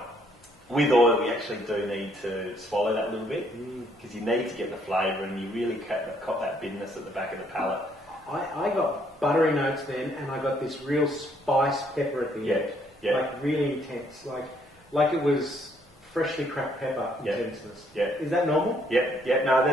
With oil, you actually do need to swallow that a little bit because you need to get the flavour, and you really cop that bitterness at the back of the palate. I got buttery notes then, and I got this real spice pepper at the end. Yeah. Like really intense, like it was freshly cracked pepper intenseness. Yeah. Is that normal? Yeah. No,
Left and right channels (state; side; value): normal; both; correlation 0.68